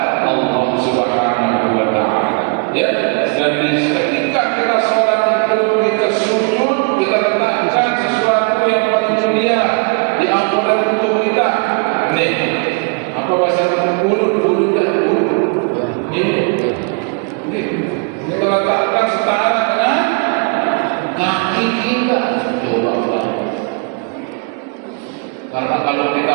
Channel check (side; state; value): left; quieter; 36.4 dB